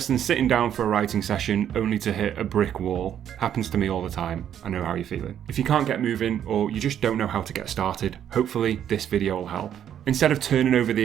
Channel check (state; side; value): quieter; left; 9.8 dB